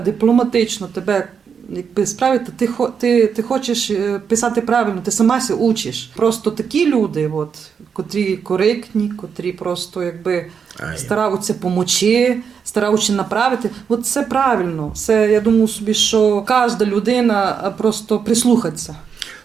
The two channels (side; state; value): left; quieter; 6.6 dB